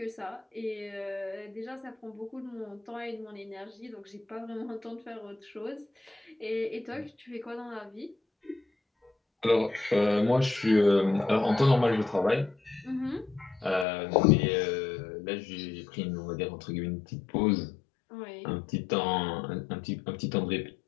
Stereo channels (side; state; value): right; drops out; at 13.9 s